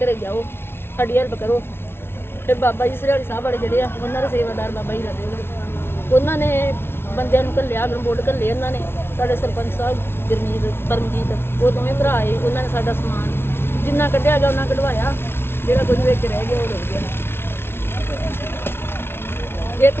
ਜਾਓ, ਸਾਡੀ ਹੈਲਪ ਕਰੋ। ਫਿਰ ਬਾਬਾ ਜੀ ਸਰਿਆਲੀ ਸਾਹਿਬ ਵਾਲੇ ਜਿਹੜੇ ਆ, ਉਹਨਾਂ ਦੇ ਸੇਵਾਦਾਰ ਬਾਬਾ ਜੀ ਲੱਗੇ, ਉਹਨਾਂ ਨੇ ਬੰਦਿਆਂ ਨੂੰ ਘੱਲਿਆ, ਗਰਮੋਟ ਘੱਲੇ ਉਹਨਾਂ ਨੇ। ਸਾਡੇ ਸਰਪੰਚ ਸਾਹਿਬ ਗੁਰਮੀਤ, ਪਰਮਜੀਤ, ਉਹ ਦੋਵੇਂ ਭਰਾ ਆਏ। ਉਹਨਾਂ ਨੇ ਸਾਡਾ ਸਮਾਨ ਜਿੰਨਾ ਕੱਢਿਆ ਗਿਆ ਉਹਨਾਂ ਕਢਵਾਇਆ, ਜਿਹੜਾ ਕੁਝ ਵਿੱਚ ਰਹਿ ਗਿਆ ਉਹ ਰੁੜ ਗਿਆ। ਇੱਕ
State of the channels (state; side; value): late; right; 0.12 ms